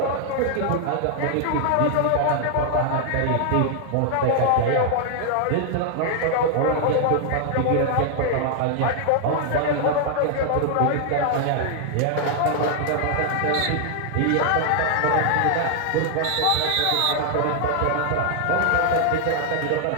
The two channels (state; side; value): different; both; correlation 0.00